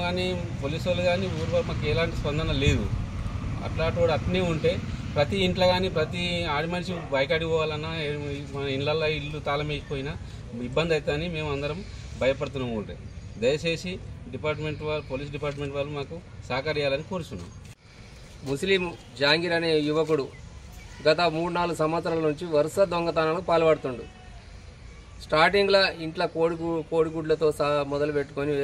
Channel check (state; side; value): identical; both; correlation 1.00